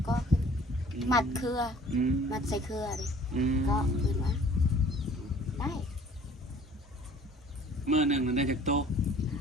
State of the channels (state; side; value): normal; both; correlation 0.52